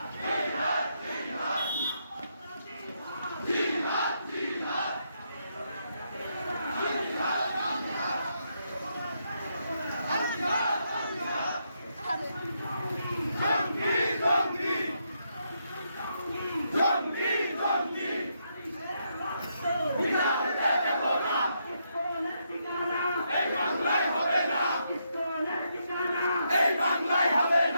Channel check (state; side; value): inverted; both; correlation -0.79